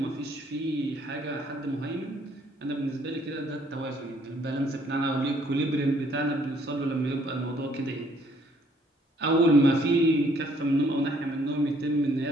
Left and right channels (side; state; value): both; normal; correlation 0.64